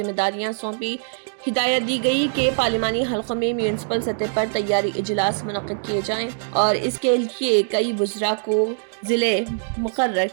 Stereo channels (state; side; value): silent; left; digital silence